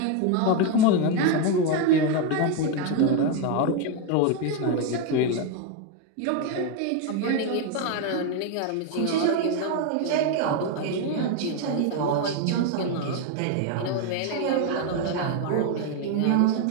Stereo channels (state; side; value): different; both; correlation 0.01